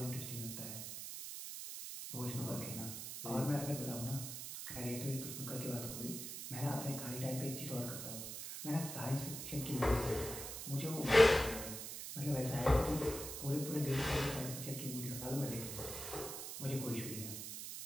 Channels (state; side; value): noise; right; hiss, 7 dB below the sound